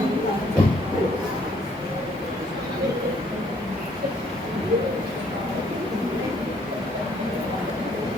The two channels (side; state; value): right; noise; hiss, 30 dB below the sound